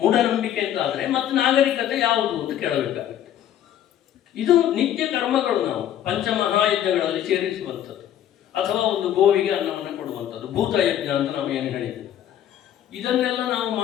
ಅಂತಾದರೆ ಮತ್ತೆ ನಾಗರಿಕತೆ ಯಾವುದು ಅಂತ ಕೇಳಬೇಕಾಗುತ್ತೆ. ಇದು ನಿತ್ಯ ಕರ್ಮಗಳು ನಾವು ಪಂಚಮಹಾಯಜ್ಞಗಳಲ್ಲಿ ಸೇರಿಸುವಂಥದ್ದು, ಅಥವಾ ಒಂದು ಗೋವಿಗೆ ಅನ್ನವನ್ನು ಕೊಡುವಂಥದ್ದು, ಭೂತಯಜ್ಞ ಅಂತ ನಾವು ಏನು ಹೇಳಿದ್ವಿ. ಇದನ್ನೆಲ್ಲ ನಾವು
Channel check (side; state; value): right; quieter; 10.9 dB